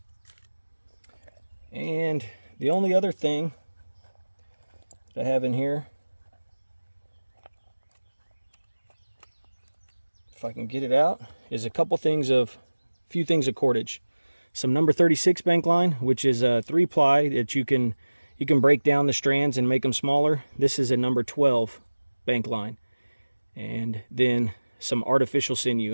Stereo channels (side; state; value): both; inverted; correlation -1.00